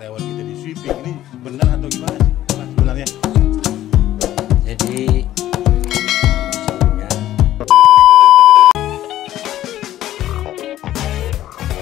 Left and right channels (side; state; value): right; quieter; 13.3 dB